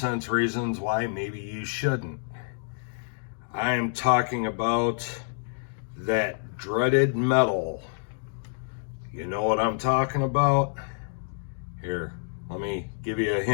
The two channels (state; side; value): silent; right; digital silence